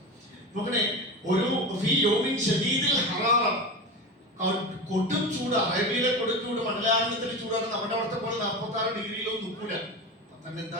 നോക്കണേ, ഒരു കൊടും ചൂട്, അറേബ്യയിലെ കൊടും ചൂട്, മണ്ഡലാരണത്തിലെ ചൂടാണ്. നമ്മുടെ അവിടുത്തെ പോലെ 46 ഡിഗ്രിയിലൊന്നും നിൽക്കൂല. തന്നെ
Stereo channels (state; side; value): normal; both; correlation 0.25